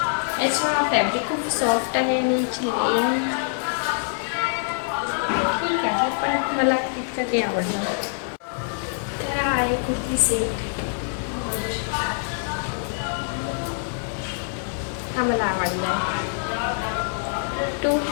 याचा फॅब्रिक खूप सॉफ्ट आहे आणि याची लेंथ ठीक आहे, पण मला इतकं काही आवडलं नाही. तर हा आहे कुर्ती सेट. हा मला आवडला आहे.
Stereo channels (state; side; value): silent; right; 62 dB below the other